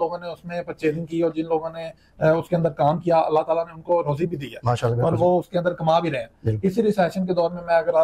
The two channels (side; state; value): both; identical; correlation 1.00